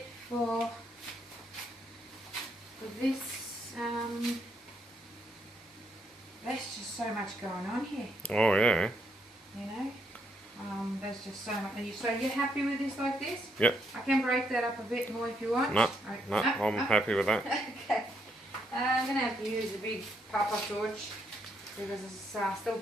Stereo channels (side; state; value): both; normal; correlation 0.75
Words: for this. There's just so much going on here. Oh yeah. You know, there's just so much. So you're happy with this like this? Yep. I can break that up a bit more if you want. No, I'm happy with that. Okay. I'm going to have to use a big papa torch because there's still